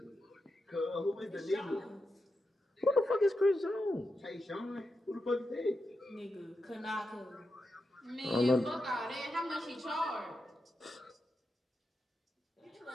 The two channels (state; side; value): normal; both; correlation 0.88